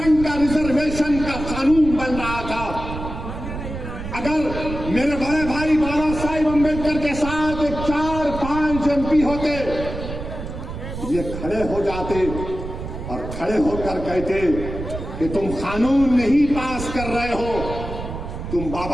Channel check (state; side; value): noise; right; rumble, 8 dB below the sound